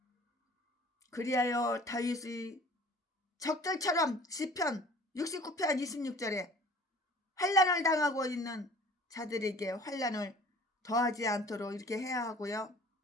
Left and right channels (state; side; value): normal; both; correlation 0.48